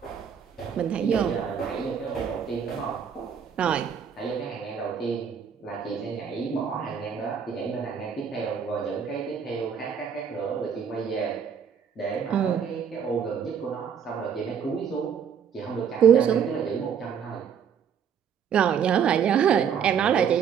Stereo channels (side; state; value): left; quieter; 7.5 dB